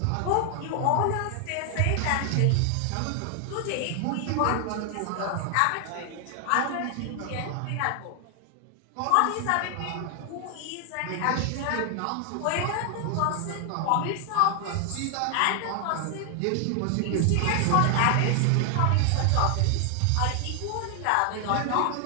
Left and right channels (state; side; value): different; both; correlation 0.00